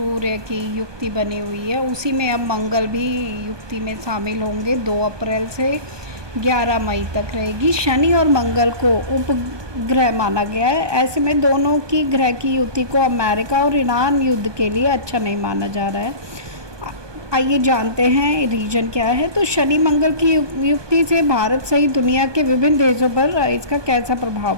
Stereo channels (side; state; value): left; late; 1.2 ms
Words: की युक्ति बनी हुई है, उसी में अब मंगल भी युक्ति में शामिल होंगे। 2 अप्रैल से 11 मई तक रहेगी। शनि और मंगल को उपग्रह माना गया है। ऐसे में दोनों की ग्रह की युति को अमेरिका और ईरान युद्ध के लिए अच्छा नहीं माना जा रहा है। आइए जानते हैं रीजन क्या है। तो शनि मंगल की युक्ति से भारत सहित दुनिया के विभिन्न देशों पर इसका कैसा प्रभाव